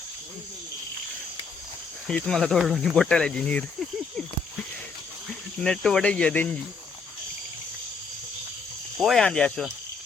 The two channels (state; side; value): quieter; right; 4.9 dB